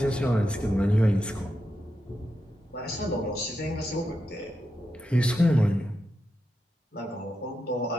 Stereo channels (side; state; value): both; normal; correlation 0.87